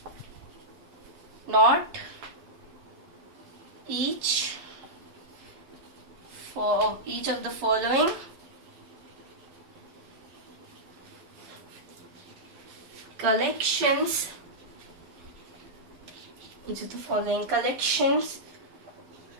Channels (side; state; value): left; late; 12 ms